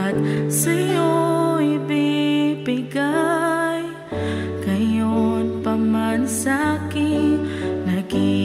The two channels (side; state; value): both; identical; correlation 1.00